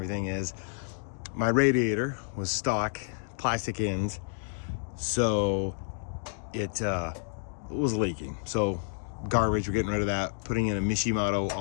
is my radiator was stock, plastic ends, so it was leaking. So garbage, we're getting rid of that, putting in a Mishimoto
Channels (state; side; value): silent; right; digital silence